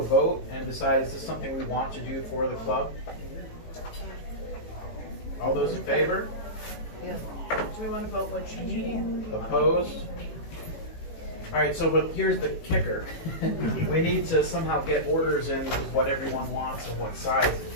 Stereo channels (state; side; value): late; right; 18 ms